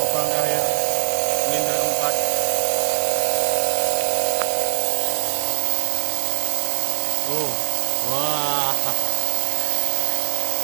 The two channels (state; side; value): silent; left; 63 dB below the other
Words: terakhir silinder keempat. Oh, wah.